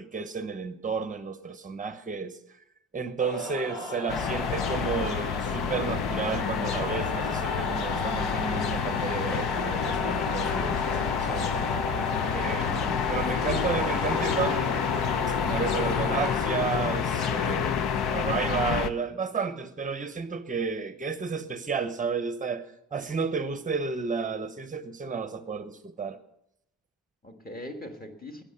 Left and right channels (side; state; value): both; normal; correlation 0.32